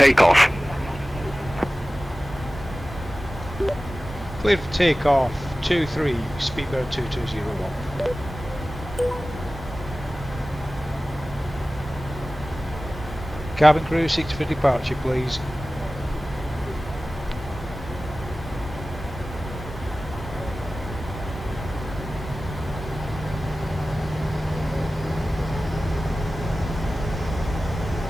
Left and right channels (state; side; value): normal; both; correlation 0.96